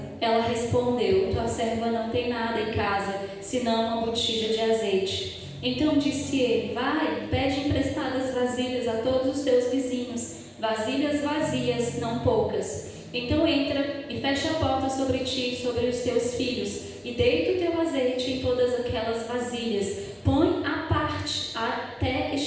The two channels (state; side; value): identical; both; correlation 1.00